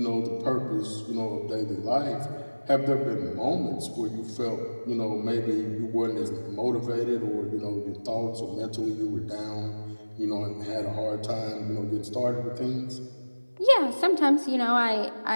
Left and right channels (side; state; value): both; inverted; correlation -1.00